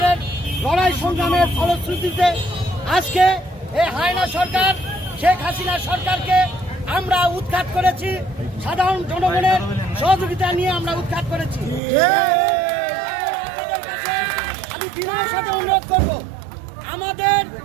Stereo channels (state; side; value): drops out; left; at 11.8 s